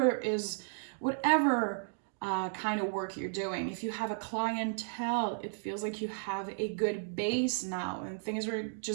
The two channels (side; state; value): left; silent; digital silence